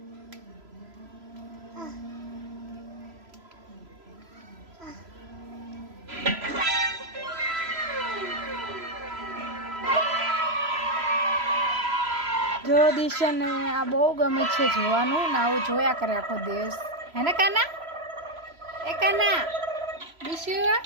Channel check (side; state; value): left; late; 3.0 ms